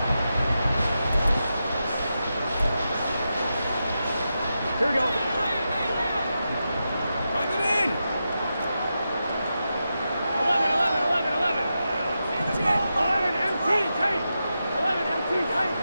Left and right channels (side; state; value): both; inverted; correlation -0.89